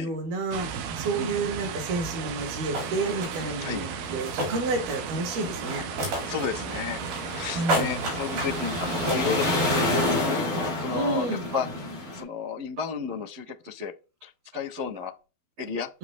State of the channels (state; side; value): late; left; 12 ms